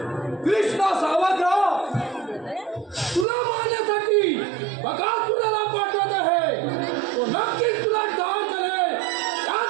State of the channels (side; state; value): left; drops out; at 3.2 s